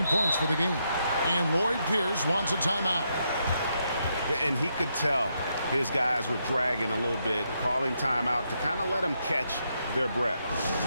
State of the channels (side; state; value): both; inverted; correlation -0.80